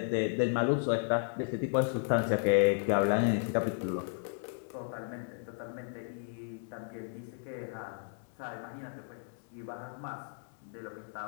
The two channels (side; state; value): right; silent; 55 dB below the other